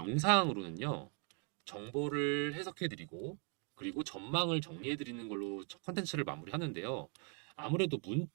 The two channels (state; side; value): quieter; left; 39.6 dB